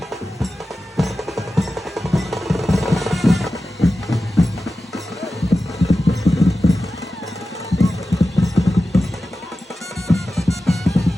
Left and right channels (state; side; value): normal; both; correlation 0.93